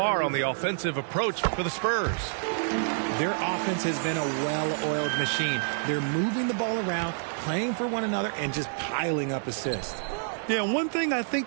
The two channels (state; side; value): silent; left; 57 dB below the other